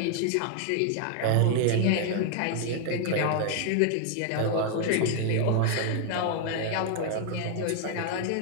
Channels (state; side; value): different; both; correlation 0.00